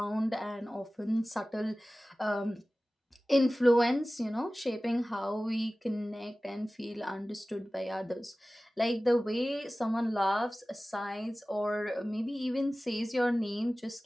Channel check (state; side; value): normal; both; correlation 0.97